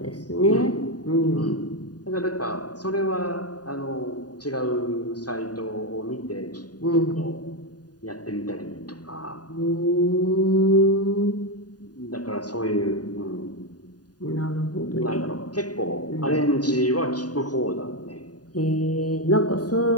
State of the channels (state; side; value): late; right; 0.69 ms